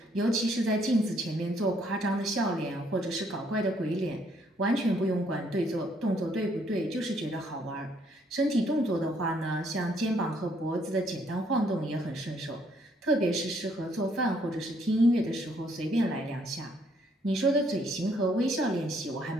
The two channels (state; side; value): normal; both; correlation 0.68